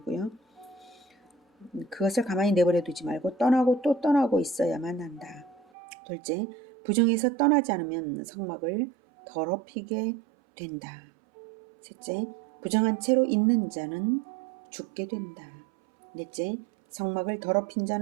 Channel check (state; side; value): drops out; left; at 5.7 s